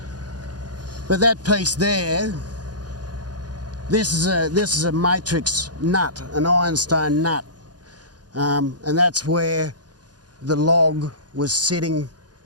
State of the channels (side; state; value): left; late; 0.69 ms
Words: But that piece there, this is a matrix nut, an ironstone nut, and that's where the log was sitting.